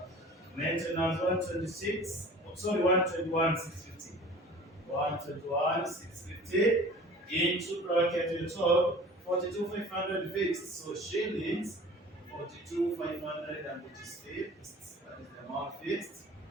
maintenance 126, sorry, 121 650. 121 650 into bracket we told 42,500 fixed. So shillings 42,500 and it is fixed. That is the amount fixed.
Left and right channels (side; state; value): both; normal; correlation 0.43